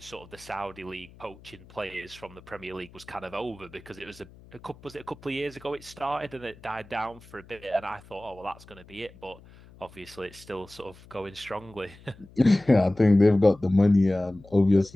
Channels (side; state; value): left; noise; hum, 23 dB below the sound